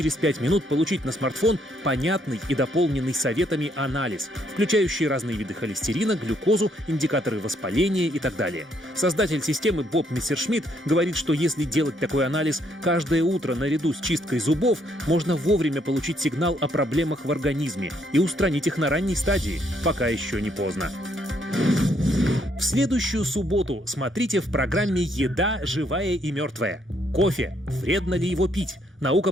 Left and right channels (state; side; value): normal; both; correlation 0.71